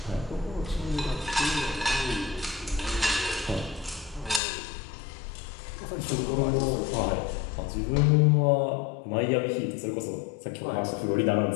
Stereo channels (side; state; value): right; drops out; at 4.4 s